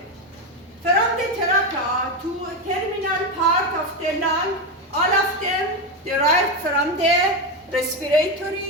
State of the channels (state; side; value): normal; both; correlation 0.12